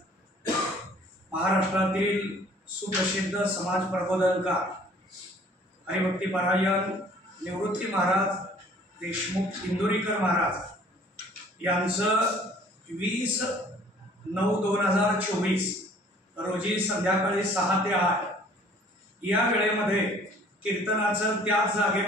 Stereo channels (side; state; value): both; normal; correlation 0.54